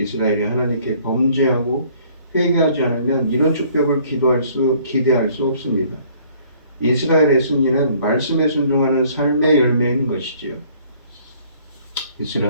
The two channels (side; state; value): both; inverted; correlation -0.58